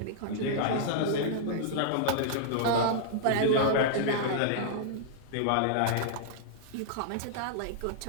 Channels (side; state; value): both; different; correlation -0.02